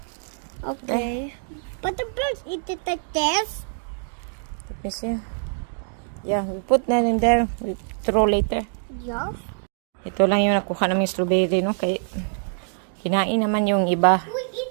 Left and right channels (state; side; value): silent; left; digital silence